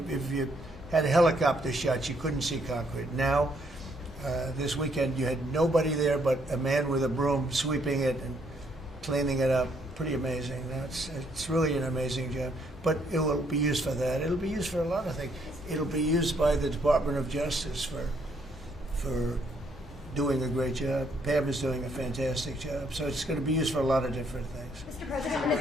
had helicopter shots, you couldn't see concrete. Now, this weekend, you had nobody there but a man with a broom sweeping it and cleaning it up. Pretty amazing. Now, it's really an amazing job. But it will be used for that. It'll be used for a lot of things. It'll be used by the Department of Justice for doing a great job. Pam is doing a fantastic job. So it's going to be used for a lot of different things. Mr. President,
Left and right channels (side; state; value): both; normal; correlation 0.70